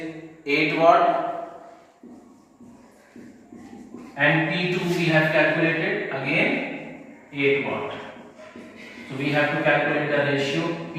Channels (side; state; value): both; identical; correlation 1.00